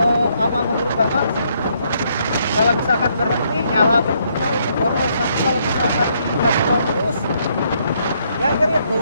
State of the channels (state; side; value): inverted; both; correlation -0.72